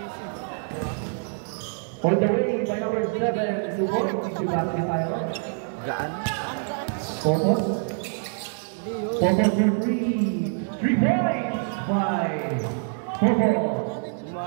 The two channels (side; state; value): left; silent; 61 dB below the other